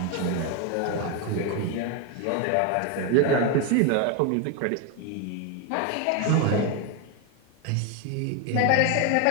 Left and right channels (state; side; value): different; both; correlation 0.02